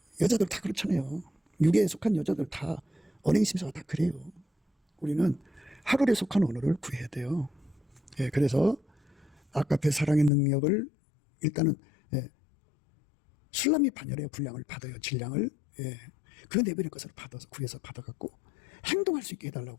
여자들 다 그렇잖아요. 육에 속한 여자들 다 언행심사가 다 그래요. 우리는 하늘에 속한 언어를 구해야 돼요. 예, 그래서 아까페 사랑의 능력을 일단은, 예, 술람이 반열의 분량을 받아요. 질량을. 예, 그 내버릴 것을 받아서 구해서 받아갖고 행동할 수 있게 해달라고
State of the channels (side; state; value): right; drops out; at 10.3 s